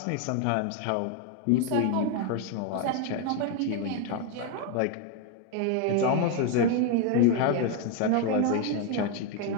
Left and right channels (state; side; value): different; both; correlation 0.01